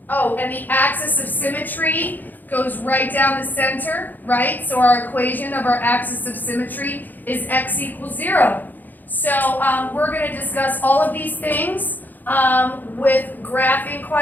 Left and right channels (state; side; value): late; right; 0.086 ms